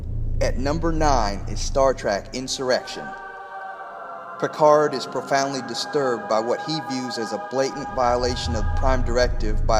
At number 9 is Star Trek Insurrection. Picard is profoundly disturbed by what he views as a blatant violation of Prime Directive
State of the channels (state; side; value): identical; both; correlation 1.00